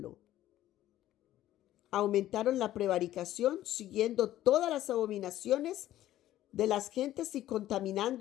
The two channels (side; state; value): right; quieter; 13.6 dB